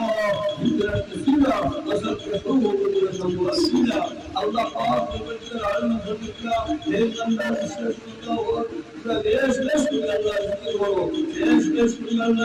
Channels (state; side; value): identical; both; correlation 1.00